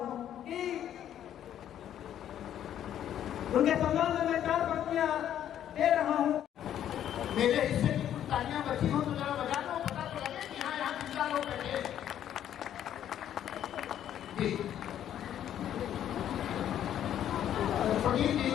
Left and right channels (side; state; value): right; quieter; 10.6 dB